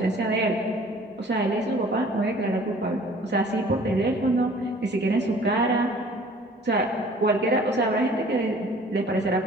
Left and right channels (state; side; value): normal; both; correlation 0.51